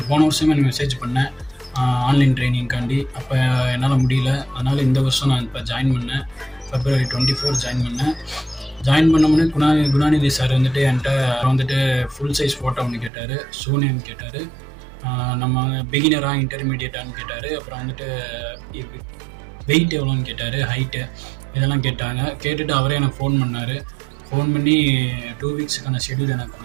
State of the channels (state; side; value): drops out; left; at 13.1 s